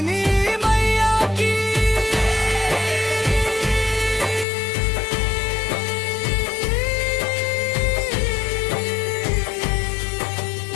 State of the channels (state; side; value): drops out; right; at 4.5 s